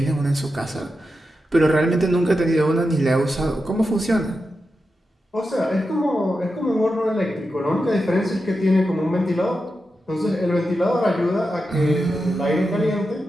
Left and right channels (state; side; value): normal; both; correlation 0.89